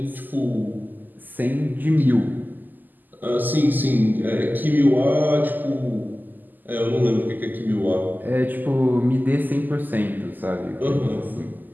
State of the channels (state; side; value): late; left; 0.087 ms